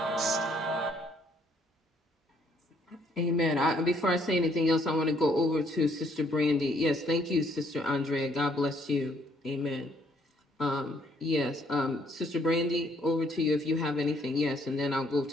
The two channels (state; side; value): normal; both; correlation 0.66